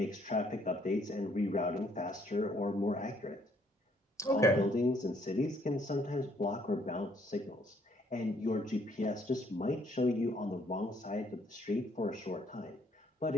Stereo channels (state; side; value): normal; both; correlation 0.66